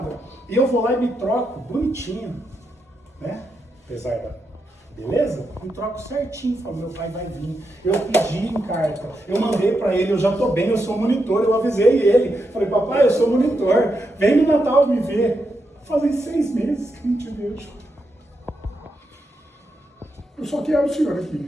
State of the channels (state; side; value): normal; both; correlation 0.84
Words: E eu vou lá e me troco bonitinho, né? Apesar da beleza, me troco certinho. Falo, meu pai vai vir. Eu pedi em carta, eu mandei para ele, eu já tô bem, eu sou monitor, eu avisei ele. Falei, papai, eu sou monitor, vem no Natal me ver. Fazem 6 meses que eu não te vejo. Eu só quero o senhor